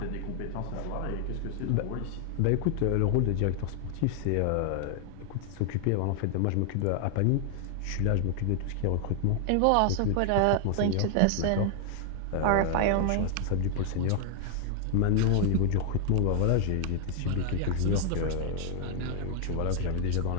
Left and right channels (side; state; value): both; different; correlation 0.00